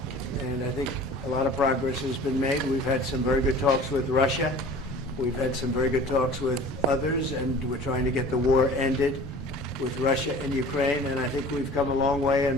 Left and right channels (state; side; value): normal; both; correlation 0.44